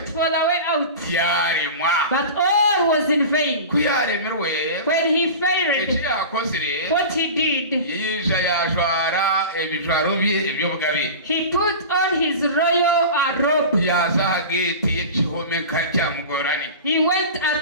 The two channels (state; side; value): inverted; both; correlation -0.32